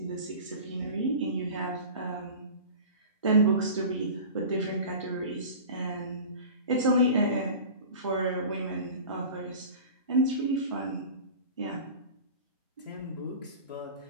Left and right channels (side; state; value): both; inverted; correlation -0.37